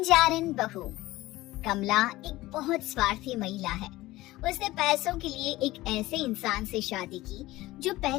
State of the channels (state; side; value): quieter; right; 18.0 dB